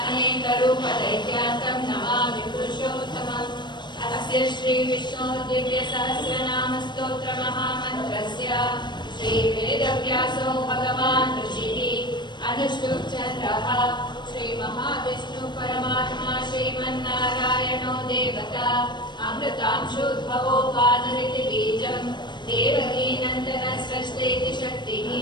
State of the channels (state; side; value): late; right; 0.22 ms